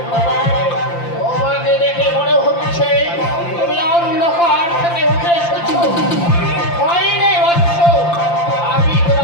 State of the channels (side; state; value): right; late; 5.8 ms